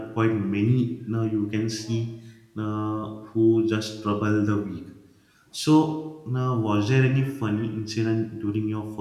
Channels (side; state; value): both; identical; correlation 1.00